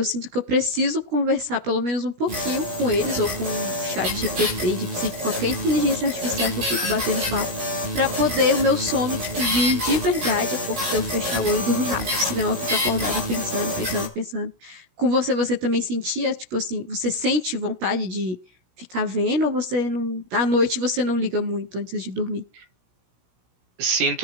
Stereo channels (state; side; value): late; left; 17 ms